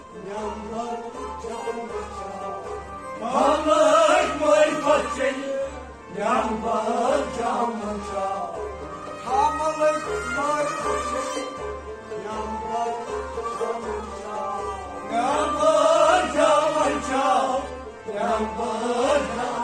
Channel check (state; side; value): identical; both; correlation 1.00